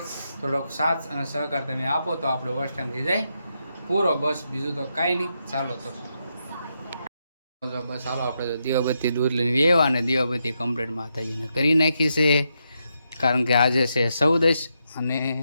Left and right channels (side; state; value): both; inverted; correlation -0.83